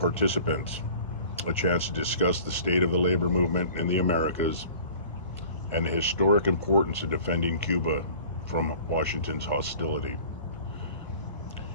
a chance to discuss the state of the labor movement in the Americas and the historic importance of defending Cuba from Washington's hostility.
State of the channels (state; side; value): inverted; both; correlation -0.46